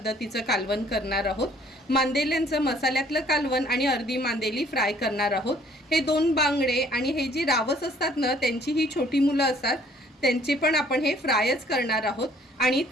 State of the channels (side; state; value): both; normal; correlation 0.59